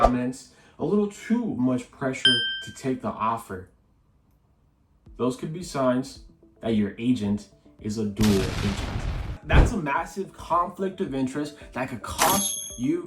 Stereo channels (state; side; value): identical; both; correlation 1.00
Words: a little too much pressure to take the offer. Those could be signs that your agent is a dual agent. That's a massive conflict of interest that could cost